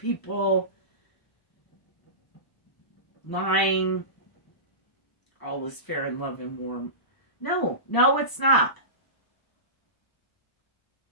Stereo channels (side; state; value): right; late; 1.0 ms